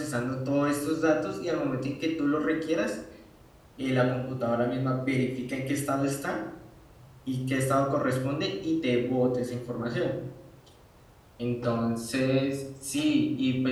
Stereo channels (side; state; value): both; identical; correlation 1.00